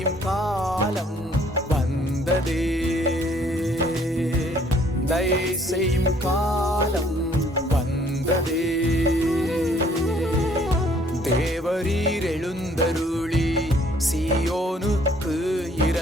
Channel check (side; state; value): both; normal; correlation 0.61